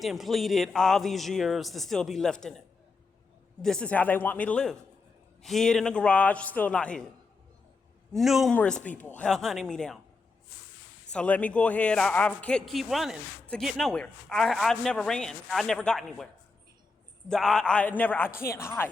and pleaded all these years to still be left in it. This is how they want me to live. Hid in a garage, still not hid. Numerous people hunting me down. So let me go ahead. I keep running to get nowhere. I've never ran. I never got anywhere. I can't hide.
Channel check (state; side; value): quieter; right; 4.1 dB